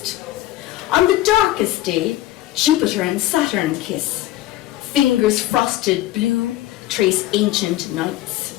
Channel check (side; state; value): right; quieter; 15.2 dB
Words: On the darkest day, Jupiter and Saturn kiss, fingers frosted blue trace ancient nights.